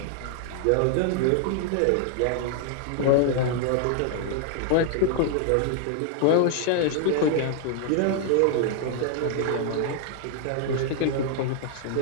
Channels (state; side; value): different; both; correlation 0.00